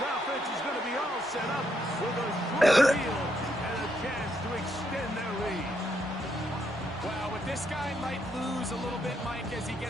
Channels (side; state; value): both; normal; correlation 0.76